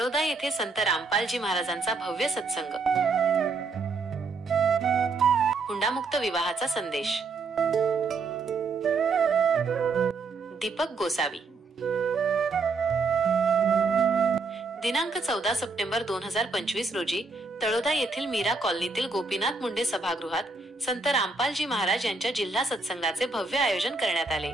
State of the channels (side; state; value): left; quieter; 4.0 dB